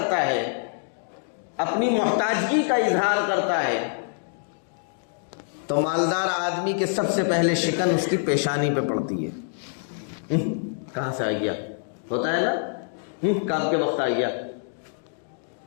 ہے، اپنی محتاجگی کا اظہار کرتا ہے، تو مالدار آدمی کے سب سے پہلے شکن اس کی پیشانی پہ پڑتی ہے۔ کہاں سے آ گیا؟ ہوتا ہے نا، کام کے وقت آ گیا۔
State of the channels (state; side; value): silent; right; digital silence